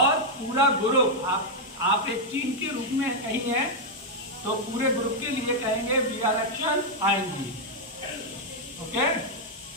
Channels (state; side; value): normal; both; correlation -0.02